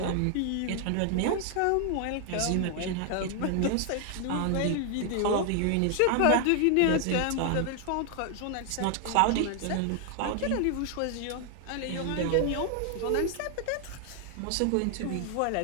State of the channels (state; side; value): different; both; correlation 0.00